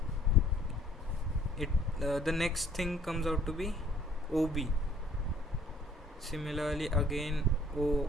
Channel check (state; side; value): normal; both; correlation 0.59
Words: the next thing comes out to be OB. Similarly again